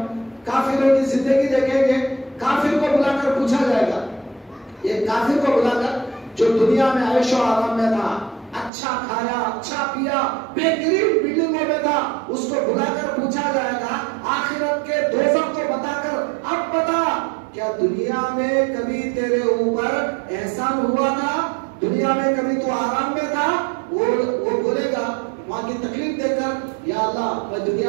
کافروں کی زندگی دیکھیں گے، کافر کو بلا کر پوچھا جائے گا، یہ کافر کو بلا کر جو دنیا میں عیش و آرام میں تھا، اچھا کھایا اچھا پیا، بہترین بلڈنگوں میں تھا، اس کو بلا کر پوچھا جائے گا آخرت کے دوزخ کو بتا کر، اب بتا کیا دنیا میں کبھی تیرے اوپر احسان ہوا تھا، دنیا میں کبھی تو آرام میں تھا؟ وہ بولے گا وہاں کی تکلیف دے کر، یا اللہ میں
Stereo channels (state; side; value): drops out; left; at 8.7 s